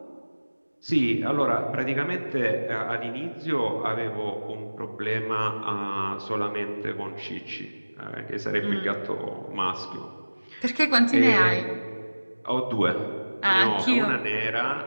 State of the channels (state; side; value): inverted; both; correlation -1.00